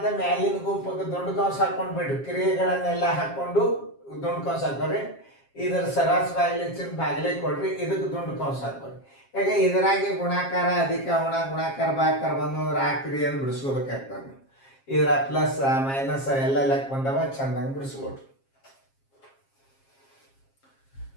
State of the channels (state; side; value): late; right; 7.4 ms